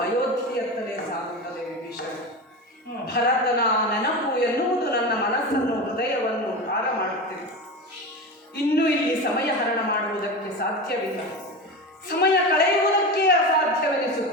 ಅಯೋಧ್ಯೆಯತ್ತಲೇ ಸಾಗುತ್ತದೆ ವಿಭೀಷಣ. ಭರತನ ನೆನಪು ಎನ್ನುವುದು ನನ್ನ ಮನಸ್ಸನ್ನು ಹೃದಯವನ್ನು ಭಾರ ಮಾಡುತ್ತಿದೆ. ಇನ್ನು ಇಲ್ಲಿ ಸಮಯ ಹರಣ ಮಾಡುವುದಕ್ಕೆ ಸಾಧ್ಯವಿಲ್ಲ. ಸಮಯ ಕಳೆಯುವುದಕ್ಕೆ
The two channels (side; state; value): both; normal; correlation 0.25